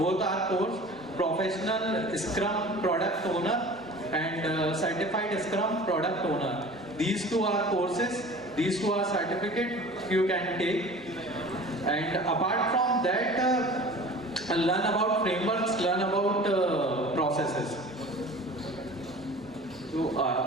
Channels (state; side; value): normal; both; correlation 0.42